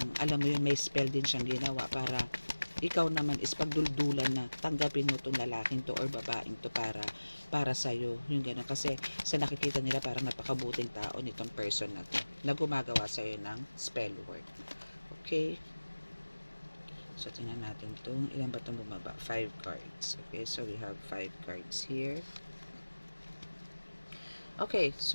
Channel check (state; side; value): inverted; both; correlation -1.00